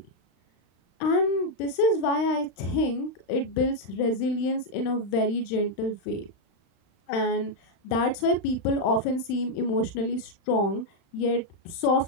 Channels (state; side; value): late; right; 35 ms